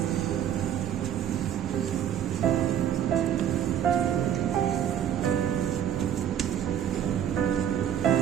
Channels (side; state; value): left; quieter; 9.8 dB